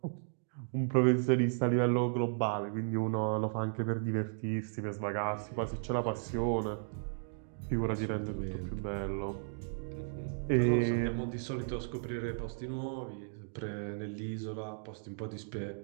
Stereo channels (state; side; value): silent; left; digital silence